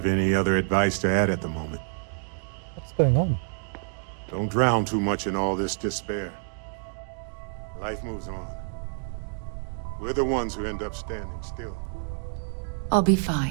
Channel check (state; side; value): silent; left; digital silence